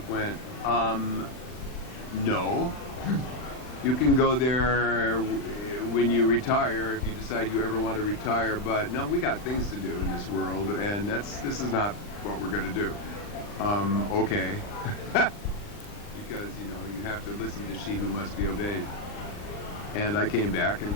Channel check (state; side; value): late; right; 39 ms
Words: went, no. You can go there when you retire, if you decide you ever want to retire, but no, we got things to do in this world, and this is not what we're going to do. Okay. Because, you have to listen to she who must be obeyed. And I came back and